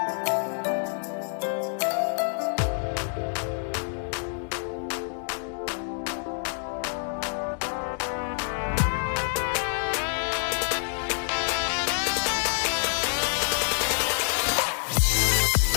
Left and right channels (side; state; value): right; silent; digital silence